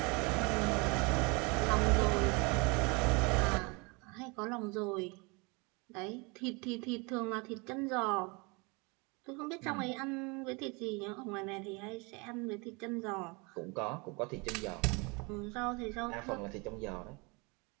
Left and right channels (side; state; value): left; quieter; 28.9 dB